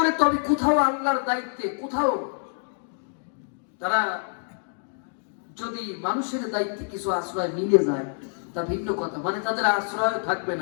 তবে কোথাও আল্লাহর দায়িত্বে, কোথাও তারা যদি মানুষের দায়িত্বে কিছু আশ্রয় মিলে যায় তা ভিন্ন কথা, মানে তাদের আশ্রয় থাকবে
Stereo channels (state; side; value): silent; right; digital silence